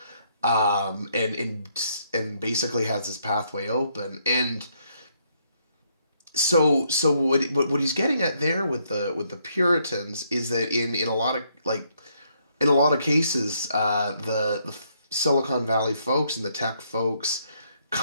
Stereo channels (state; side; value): inverted; both; correlation -0.72